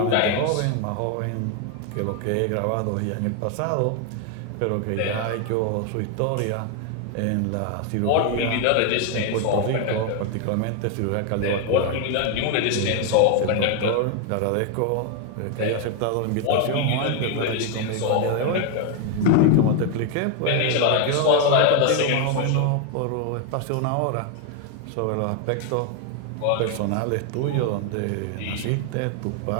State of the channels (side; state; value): both; different; correlation 0.01